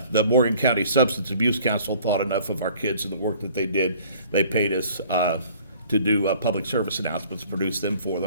the Morgan County Substance Abuse Council thought enough of our kids and the work that they did. They paid us to do public service announcements, produce them for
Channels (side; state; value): both; inverted; correlation -0.53